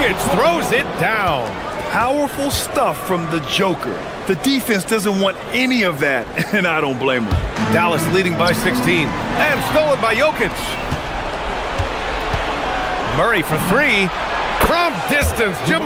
throws it down. Powerful stuff from the Joker. The defense doesn't want any of that, and I don't blame them. Dallas leading by 16. And stolen by Jokic. Murray for 3. From distance,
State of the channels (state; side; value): identical; both; correlation 1.00